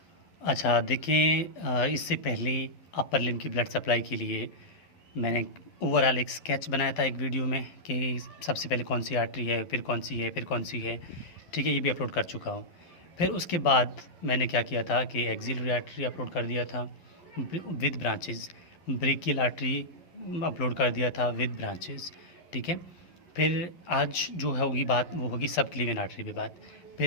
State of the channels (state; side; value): late; right; 12 ms